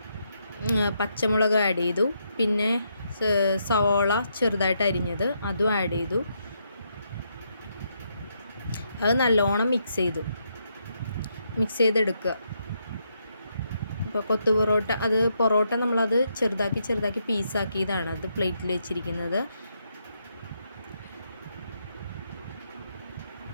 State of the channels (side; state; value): both; inverted; correlation -0.78